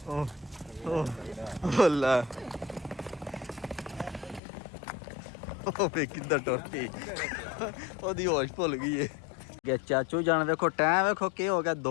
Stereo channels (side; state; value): right; drops out; at 4.4 s